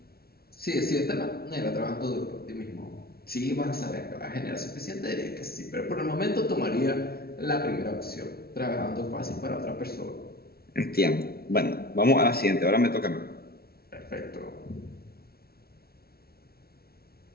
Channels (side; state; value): right; late; 0.45 ms